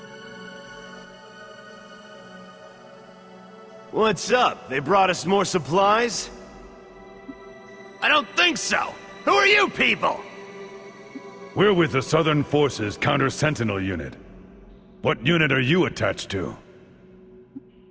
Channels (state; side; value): identical; both; correlation 1.00